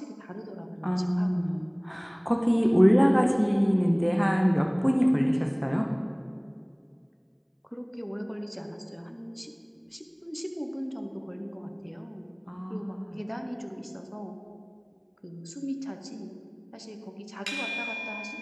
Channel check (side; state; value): both; identical; correlation 1.00